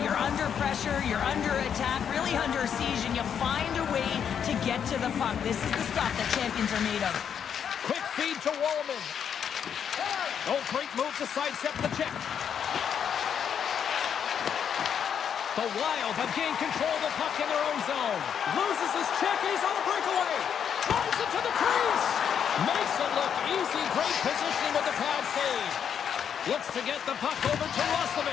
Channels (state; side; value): quieter; right; 8.0 dB